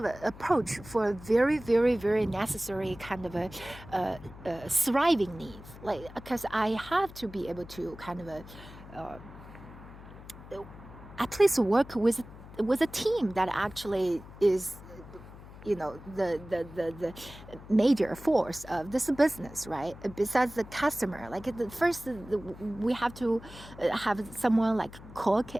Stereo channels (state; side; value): noise; left; hum, 17 dB below the sound